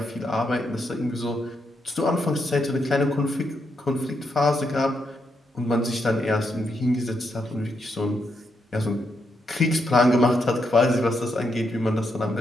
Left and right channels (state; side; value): normal; both; correlation 0.80